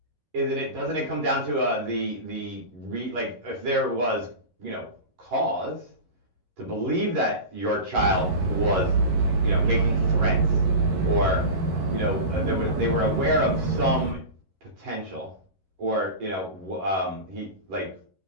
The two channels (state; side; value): late; left; 11 ms